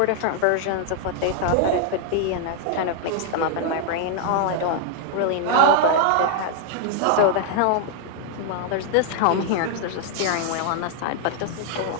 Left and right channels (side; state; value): both; different; correlation 0.00